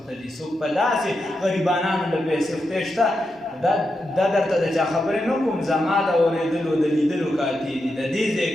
دي څوک په داسې غریبانانو له پیسې خدای شته دا درته د چا خبرې نه کوم زما د اورېدلو د لیدلو کاتې دي د دې ځای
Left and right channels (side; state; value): both; normal; correlation 0.86